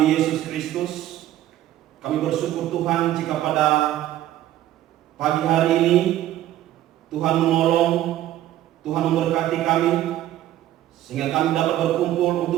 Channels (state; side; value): quieter; left; 13.4 dB